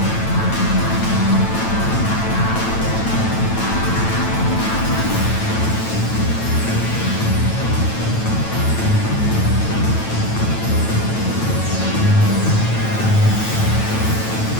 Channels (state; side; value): late; right; 9.0 ms